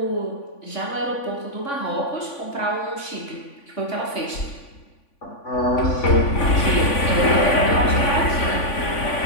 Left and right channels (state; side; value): late; right; 3.5 ms